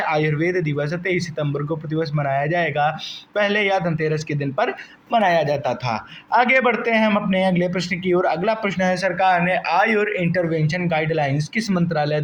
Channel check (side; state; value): both; identical; correlation 1.00